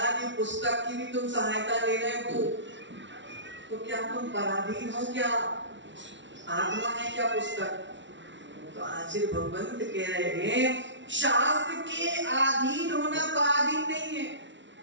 ये पुस्तक की भी तुम सहायता ले रहे हो, तो क्या तुम पराधीन हो? क्या आत्मा है क्या पुस्तक? तो आचार्य भगवंत कह रहे हैं, शास्त्र के अधीन होना पराधीन नहीं है,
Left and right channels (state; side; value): late; left; 0.54 ms